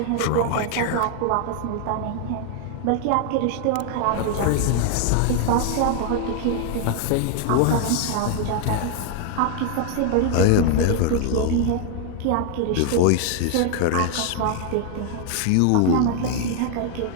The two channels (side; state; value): both; different; correlation 0.00